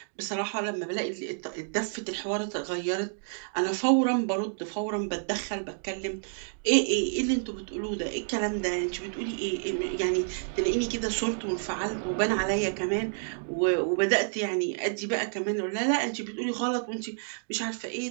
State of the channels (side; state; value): left; silent; digital silence